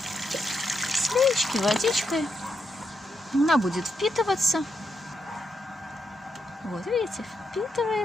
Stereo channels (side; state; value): both; normal; correlation 0.82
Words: Слеечки, водичкой. Она будет впитываться. Вот, видите,